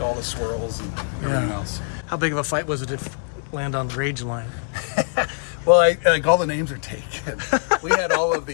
all the swirls and everything else. How big of a fight was it to land on the Rangeline? Well, like all the names are taken. We had all of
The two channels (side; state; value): right; silent; digital silence